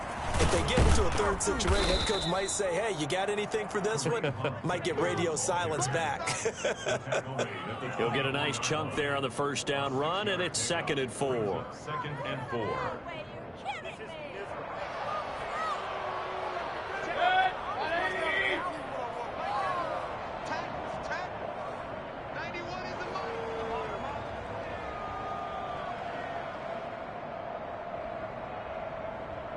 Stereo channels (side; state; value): both; identical; correlation 1.00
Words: if they get into a third situation, head coach might say, hey, you got anything for this one? Might get radio silence back. He'll get a nice chunk there on the first down run, and it's 2nd and 4. 2nd and 4.